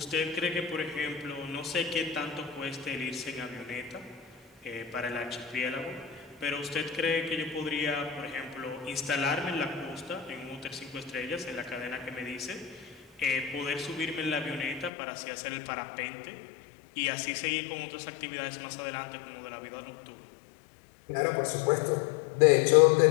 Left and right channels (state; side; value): drops out; right; at 14.9 s